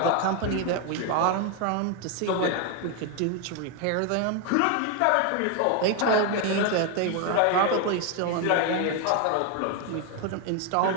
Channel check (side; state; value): both; different; correlation 0.01